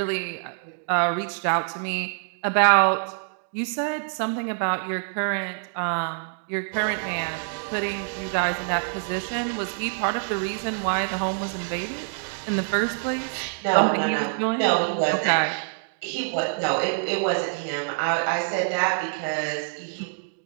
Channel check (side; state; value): left; silent; digital silence